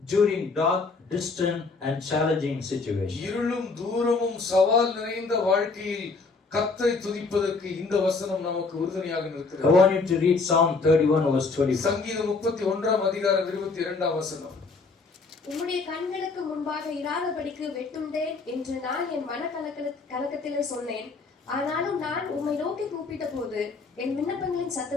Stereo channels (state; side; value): quieter; right; 4.1 dB